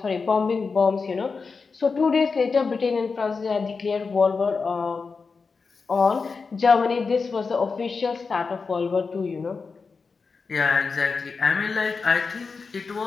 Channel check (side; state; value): right; quieter; 4.8 dB